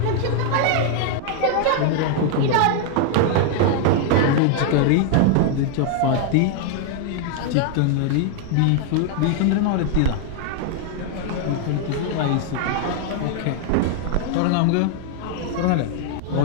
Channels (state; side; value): different; both; correlation 0.00